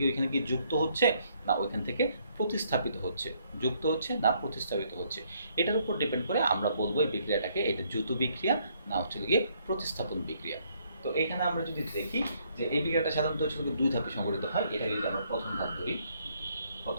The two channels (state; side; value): inverted; both; correlation -0.69